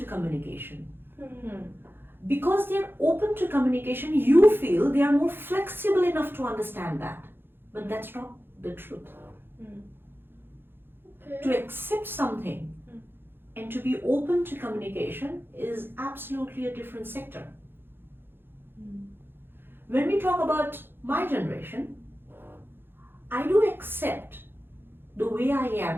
communication. Because they are open to communication, you feel they are more flexible enough to understand that. But that's not the truth. Okay. To accept something and to be open to communication is absolutely a different sector. When we talk about my generation, I do accept the way I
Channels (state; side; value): late; left; 0.10 ms